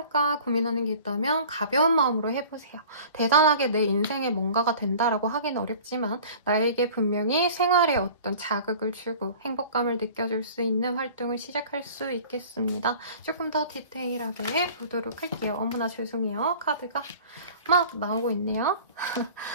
고민하는 게 있다면 가벼운 마음으로 해보세요. 대단하게 내 인생에 뭔가가 된다라고 하긴 어렵지만 나에게 분명히 생활에 어떤 자극을 주고 행복감을 느껴줄 수 있는 활동을 시작할 수 있겠습니다. 조금 더 디테일하게 보도록 할게요. 어머나 죄송해요. 카드가 막 나오고 있네요.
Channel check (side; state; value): both; inverted; correlation -0.44